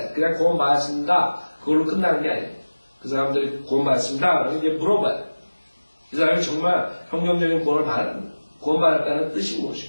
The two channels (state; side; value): inverted; both; correlation -1.00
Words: 그냥 구원받았습니다. 그걸로 끝나는 게 아니에요. 그 사람들이 구원받았습니다. 그러면 이제 물어봐야 돼. 이 사람이 정말 성경적인 구원받았다는 뜻이